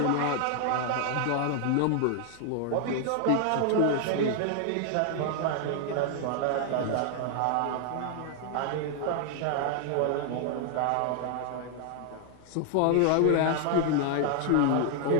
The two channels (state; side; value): different; both; correlation 0.00